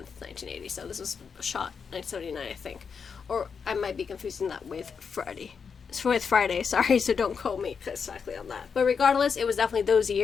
1980. So this was shot 1979, I think. Or I might be confusing that with Friday. Sorry, so don't quote me exactly on that. But regardless, it was definitely those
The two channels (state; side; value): quieter; right; 6.0 dB